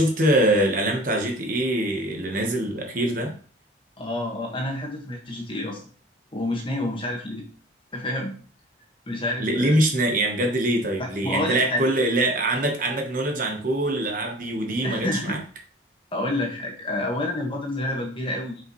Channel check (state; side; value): normal; both; correlation 0.44